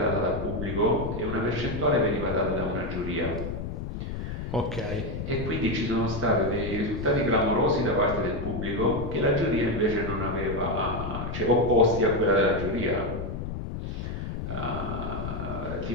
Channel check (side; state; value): left; noise; rumble, 5 dB below the sound